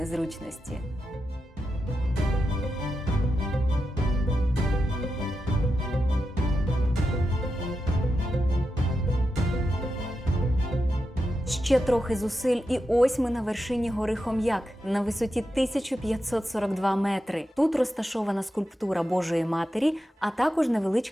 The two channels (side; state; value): both; normal; correlation 0.88